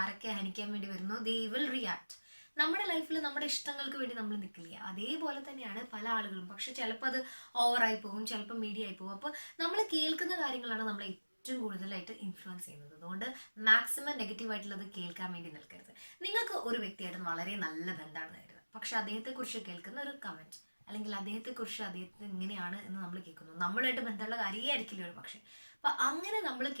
ആരൊക്കെ ഹനിക്കാൻ വേണ്ടി വരുന്നോ, ദേ വിൽ റിയാക്ട്. നമ്മുടെ ലൈഫിൽ നമ്മുടെ ഇഷ്ടങ്ങൾക്ക് വേണ്ടി നമ്മൾ നിൽക്കില്ല. അതേപോലെ തന്നെയാണ് പല ആളുകളും. പക്ഷെ ചിലപ്പോൾ അത് ഓവറായി പോകും, ചിലപ്പോൾ മീഡിയ ആയി പോകും. അപ്പോൾ നമ്മൾ കേൾക്കുന്ന കാര്യങ്ങളാണ് നമ്മളെ ഏറ്റവും കൂടുതലായിട്ട് ഇൻഫ്ലുവൻസ് ചെയ്യുന്നത്. അതുകൊണ്ട് മാക്സിമം നെഗറ്റീവായിട്ടുള്ളത് കേൾക്കാൻ വേണ്ടി നിൽക്കരുത്. നിങ്ങൾക്ക് ഒരു വ്യക്തിയായിട്ട് വളരെ നല്ല ബന്ധമാണെന്ന് കരുതുക, പക്ഷെ അദ്ദേഹത്തെക്കുറിച്ച് കേൾക്കുന്ന ഒരു കമൻറ്റ്, അല്ലെങ്കിൽ അദ്ദേഹത്തിന് ഇങ്ങനെയാണ് എന്ന് നമ്മൾ കേൾക്കുന്നു, നമ്മളുമായിട്ട് ബന്ധമുള്ള കാര്യമേ ആയിരിക്കില്ല ഒരു പക്ഷേ. അപ്പം അങ്ങനെ നമ്മൾ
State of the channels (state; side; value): inverted; both; correlation -1.00